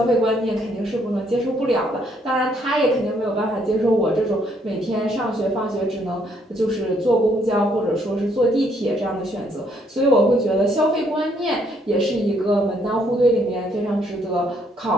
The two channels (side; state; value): both; normal; correlation 0.69